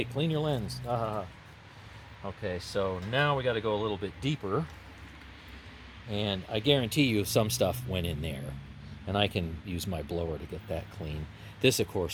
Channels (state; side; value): identical; both; correlation 1.00